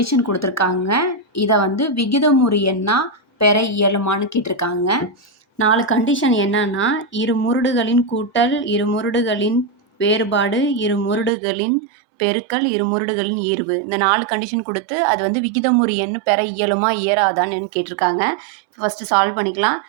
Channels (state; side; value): drops out; left; at 11.3 s